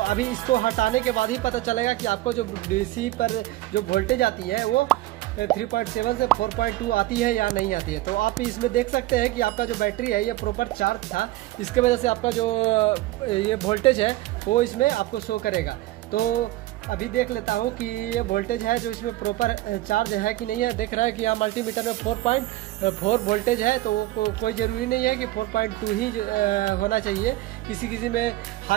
अभी इसको हटाने के बाद ही पता चलेगा कि आपको जो DC पर जो वोल्टेज आती है वो 3.7 से 4.2 आती है या नहीं आती है। तो आप इसमें देख सकते हैं कि आपका जो बैटरी है ये प्रॉपर चार्ज था, इसके वजह से आपका जो ये वोल्टेज है वो इसमें आपको शो करेगा। तो अभी देख लेता हूँ कि ये वोल्टेज है जो इसमें प्रॉपर चार्ज है कि नहीं है। देख रहा है कि यहाँ मल्टीमीटर में 4.4 वोल्टेज है, तो कोई ज़रूरी नहीं है कि 4.2 ही होना चाहिए। किसी में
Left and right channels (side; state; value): left; quieter; 16.9 dB